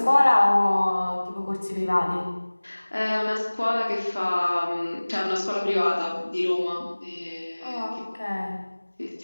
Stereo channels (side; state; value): both; inverted; correlation -1.00